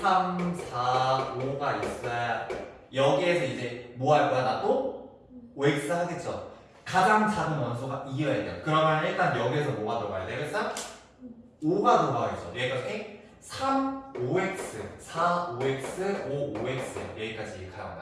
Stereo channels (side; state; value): both; identical; correlation 1.00